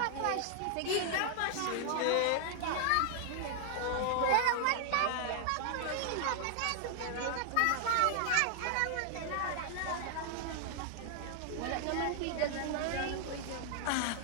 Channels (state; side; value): different; both; correlation 0.00